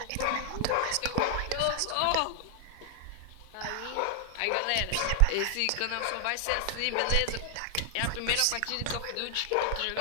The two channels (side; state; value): both; different; correlation 0.00